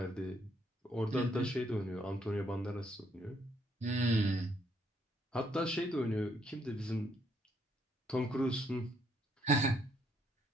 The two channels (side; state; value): both; normal; correlation 0.71